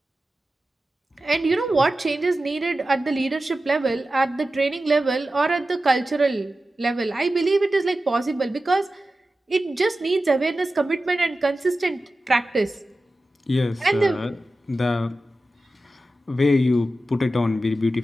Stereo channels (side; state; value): both; normal; correlation 0.94